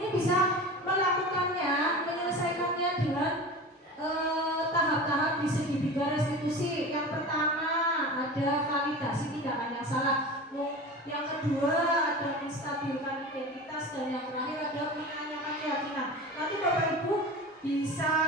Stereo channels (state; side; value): normal; both; correlation 0.33